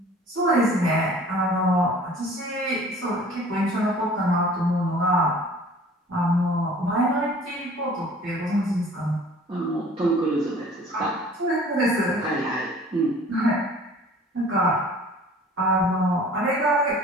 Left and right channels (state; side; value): normal; both; correlation 0.48